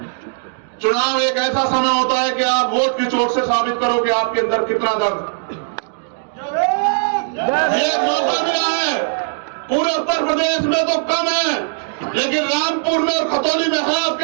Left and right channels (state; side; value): silent; left; digital silence